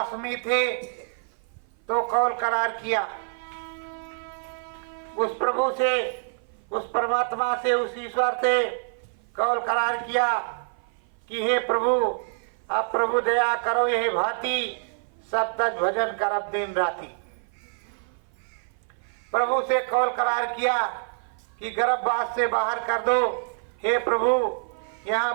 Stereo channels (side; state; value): left; silent; 56 dB below the other